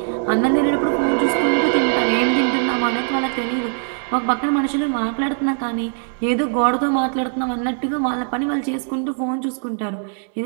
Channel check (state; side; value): silent; left; digital silence